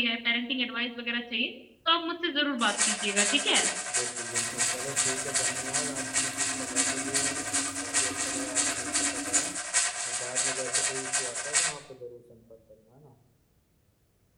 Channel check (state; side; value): identical; both; correlation 1.00